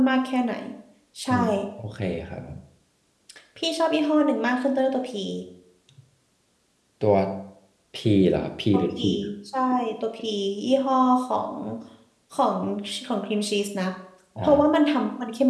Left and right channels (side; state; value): both; identical; correlation 1.00